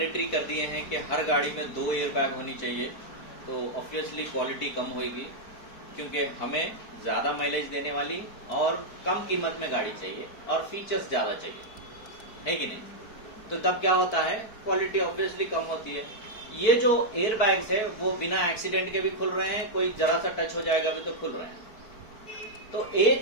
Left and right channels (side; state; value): right; late; 4.6 ms